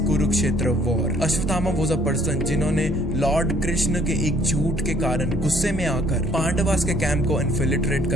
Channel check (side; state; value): both; normal; correlation 0.61